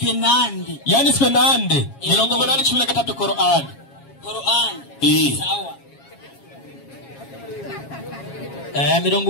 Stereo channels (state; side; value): late; right; 7.3 ms